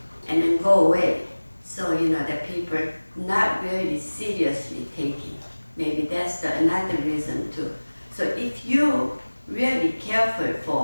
and then go away. So, the people not really seriously taking. Maybe that's another reason to So if you really careful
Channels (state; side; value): inverted; both; correlation -1.00